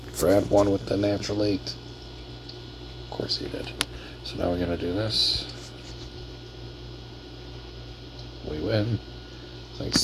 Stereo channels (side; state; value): both; identical; correlation 1.00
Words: Brad won with the natural 8. Of course he did. So now we're going to do this. We win. Thanks